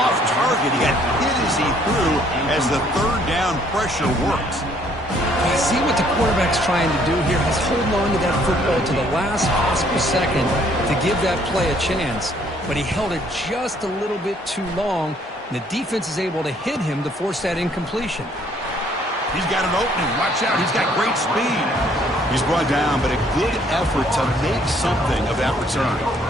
target. He got hit as he threw as the 3rd down pressure worked. I see what the quarterback's trying to do here. He's holding on to that football to the last possible second to give that play a chance. But he held it just a little bit too long, and the defense is able to hit him to force that incompletion. He's got an opening. Watch out. He's got great speed. He's brought down, but a good effort to make something of that return.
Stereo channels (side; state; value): both; normal; correlation 0.63